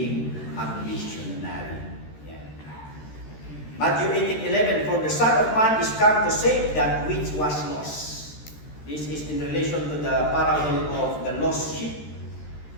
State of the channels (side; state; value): right; late; 13 ms